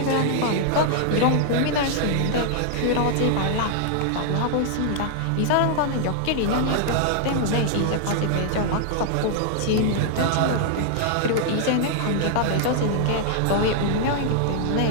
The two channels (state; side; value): different; both; correlation -0.01